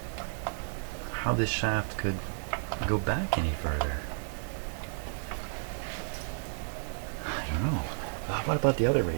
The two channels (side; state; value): left; silent; digital silence